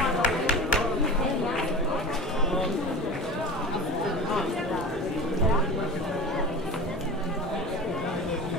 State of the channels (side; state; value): both; normal; correlation 0.33